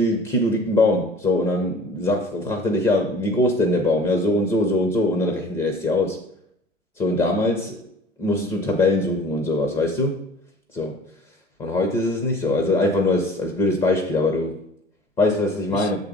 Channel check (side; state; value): both; normal; correlation 0.46